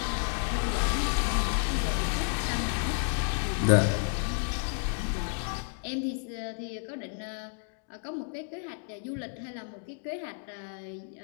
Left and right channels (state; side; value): silent; right; 57 dB below the other